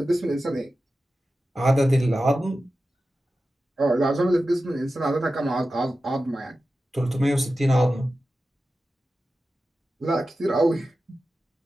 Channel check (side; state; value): both; normal; correlation 0.93